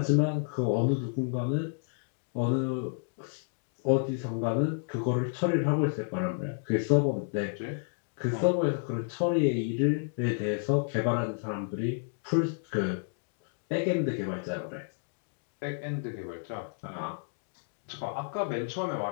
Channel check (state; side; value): silent; right; digital silence